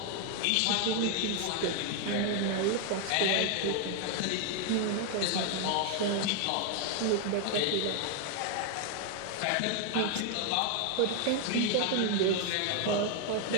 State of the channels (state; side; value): different; both; correlation 0.00